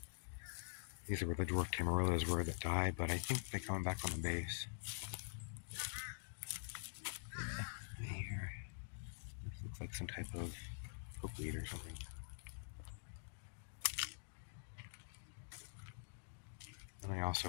These are where the dwarf tamarillos were that died, but I think they come back on the base. Yeah, right here. This looks like some type of pokeweed or something. And I also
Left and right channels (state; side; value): silent; right; digital silence